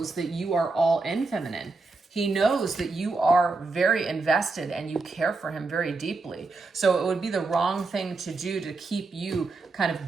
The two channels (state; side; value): quieter; left; 3.7 dB